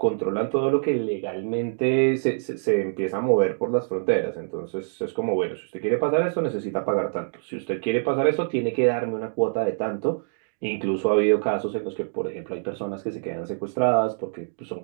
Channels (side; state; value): left; silent; digital silence